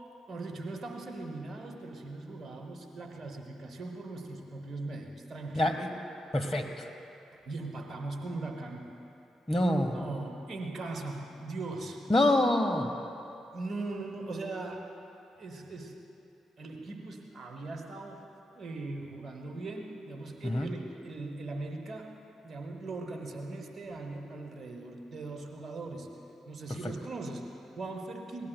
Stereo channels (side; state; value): both; normal; correlation 0.85